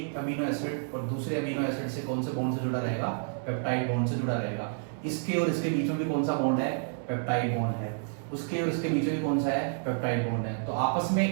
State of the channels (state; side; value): silent; left; digital silence